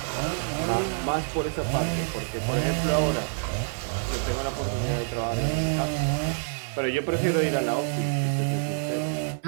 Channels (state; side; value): silent; left; 60 dB below the other